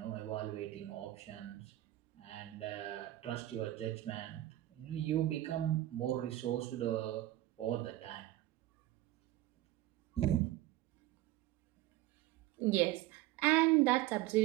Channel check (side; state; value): left; quieter; 15.4 dB